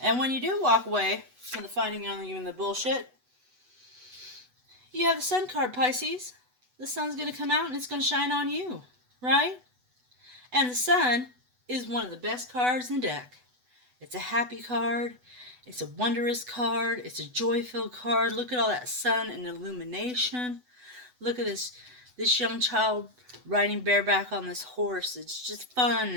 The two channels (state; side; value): late; left; 8.0 ms